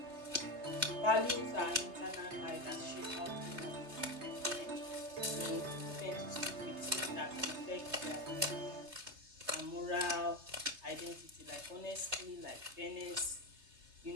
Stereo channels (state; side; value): late; left; 3.3 ms